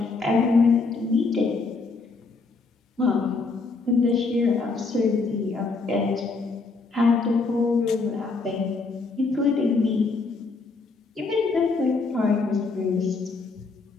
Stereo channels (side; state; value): right; quieter; 4.1 dB